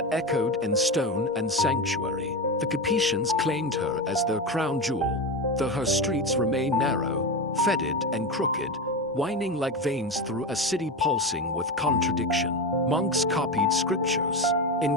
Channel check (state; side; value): normal; both; correlation 0.19